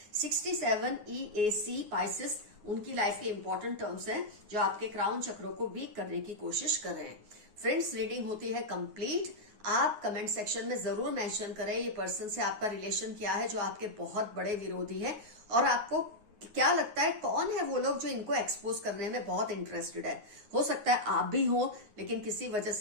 67 EAC पाइसेस उनकी लाइफ के इंपॉर्टेंट टर्म्स हैं जो आपके क्राउन चक्रों को वीक करने की कोशिश कर रहे हैं। फ्रेंड्स, रीडिंग होती है कंप्लीट। आप कमेंट सेक्शन में जरूर मेंशन करें ये पर्सन से आपका रिलेशन क्या है जो आपके बहुत बड़े विरोधी है और आपको क्या लगता है कौन है वो लोग जो इनको एक्सपोज करने में बहुत इंटरेस्टेड है। हो सकता है आप भी हो, लेकिन किसी वजह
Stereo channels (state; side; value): late; left; 9.5 ms